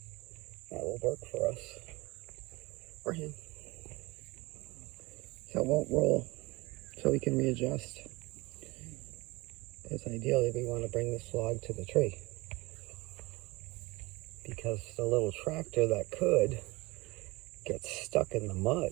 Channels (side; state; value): left; quieter; 22.6 dB